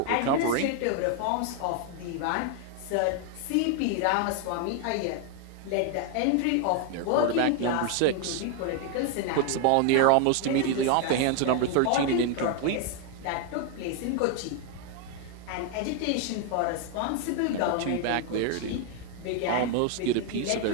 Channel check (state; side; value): different; both; correlation 0.01